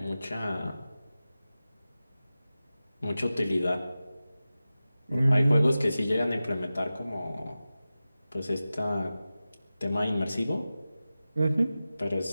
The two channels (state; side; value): inverted; both; correlation -0.95